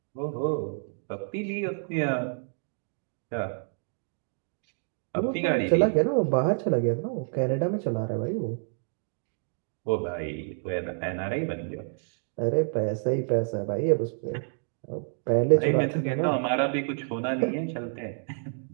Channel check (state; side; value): silent; left; 59 dB below the other